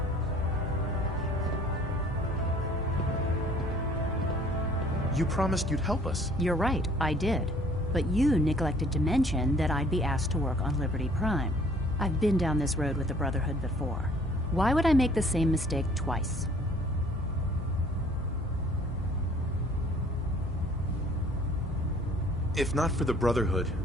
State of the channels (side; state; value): both; normal; correlation 0.55